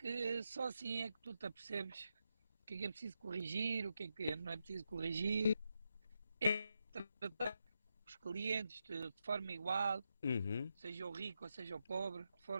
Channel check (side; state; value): both; inverted; correlation -0.85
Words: só assim é que tu te apercebes o que é preciso corrigir, o que é que não é preciso corrigir. É tratar os clientes de forma igual, Uhum. seja o rico ou seja o pobre, de